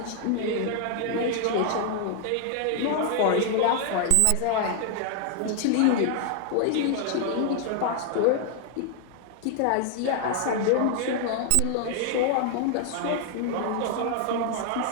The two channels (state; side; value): different; both; correlation 0.00